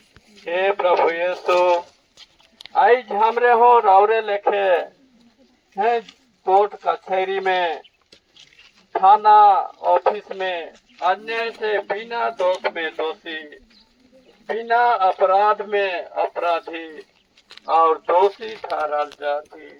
हे प्रभु यीशु आज हमरे हो राउरे लेखे है कोर्ट कचहरी में थाना ऑफिस में अन्याय से बिना दोष में दोषी बिना अपराध में अपराधी और दोषी ठहराल जाती।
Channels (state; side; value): identical; both; correlation 1.00